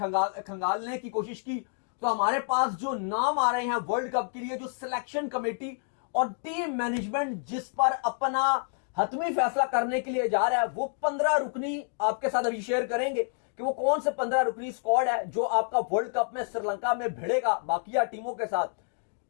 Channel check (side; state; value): right; silent; 55 dB below the other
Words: की कोशिश की, तो हमारे पास जो नाम आ रहे हैं वर्ल्ड कप के लिए, जो सिलेक्शन कमेटी और टीम मैनेजमेंट जिस पर अपना हतमी फैसला करने के लिए जा रहा है, वो 15 रुकनी आपके साथ अभी शेयर करेंगे कि वो कौन से 15 रुकनी स्क्वाड है जो आपका वर्ल्ड कप में श्रीलंका में भिड़ेगा बाकिया टीमों के साथ।